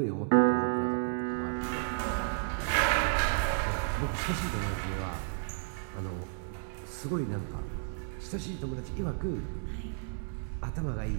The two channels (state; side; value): silent; left; digital silence